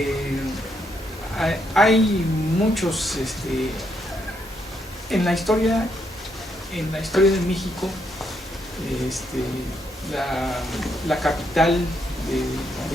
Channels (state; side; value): normal; both; correlation 0.76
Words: hay muchos, en la historia de México, la capital